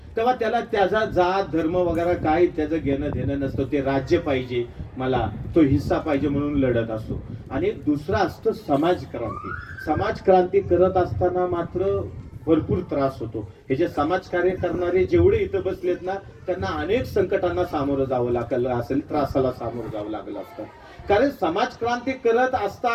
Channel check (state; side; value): identical; both; correlation 1.00